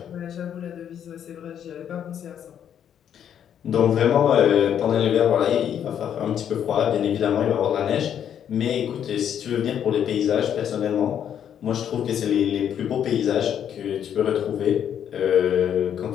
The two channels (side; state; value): right; quieter; 9.2 dB